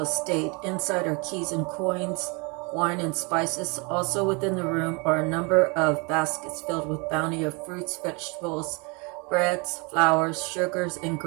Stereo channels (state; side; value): quieter; left; 30.8 dB